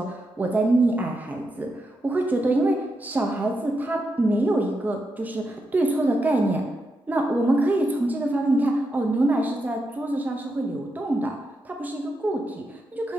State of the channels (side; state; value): both; normal; correlation 0.85